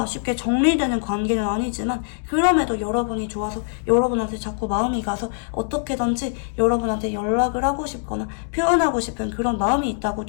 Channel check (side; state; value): right; silent; digital silence